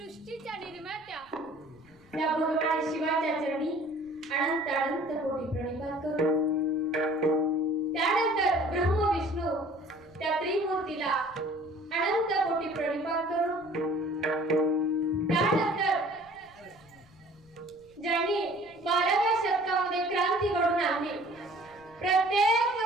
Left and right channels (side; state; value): left; noise; rumble, 28 dB below the sound